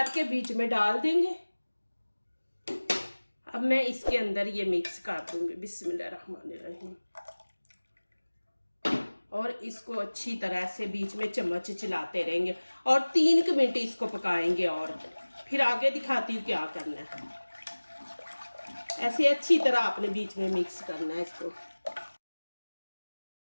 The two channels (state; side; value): inverted; both; correlation -1.00